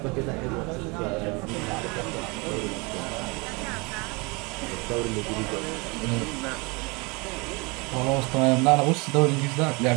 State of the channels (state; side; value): quieter; left; 27.9 dB